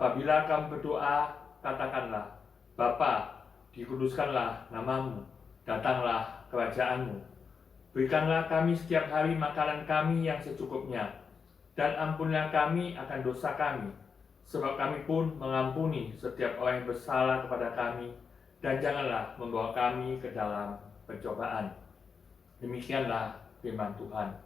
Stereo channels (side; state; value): right; quieter; 5.8 dB